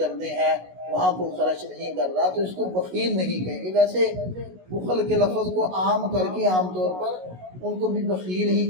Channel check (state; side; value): late; left; 16 ms